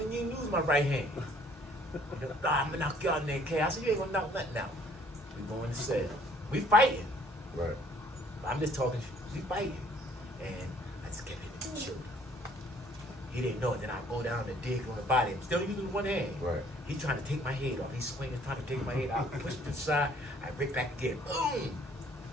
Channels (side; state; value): both; normal; correlation 0.59